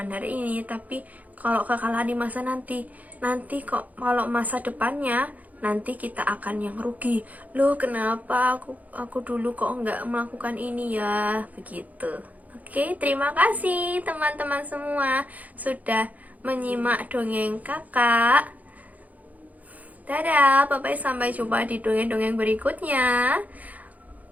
hari ini. Tapi kalau kekalahan di masa nanti kok kalau masa depannya nanti kita akan yang rugi. Loh, kenapa aku dulu kok nggak melakukan ini ya? Begitu. Oke, terima kasih teman-teman semua sudah menyimak dongeng kakak. Dadah, bye-bye, sampai jumpa di dongeng-dongeng berikutnya.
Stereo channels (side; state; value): left; late; 0.077 ms